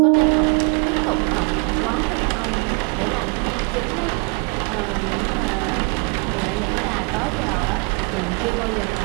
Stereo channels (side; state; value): left; quieter; 32.9 dB